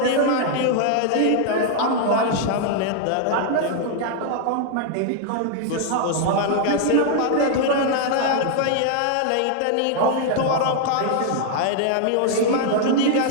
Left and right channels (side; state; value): both; different; correlation 0.00